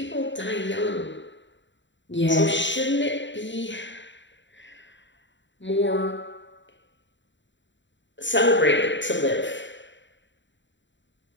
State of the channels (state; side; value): late; right; 0.54 ms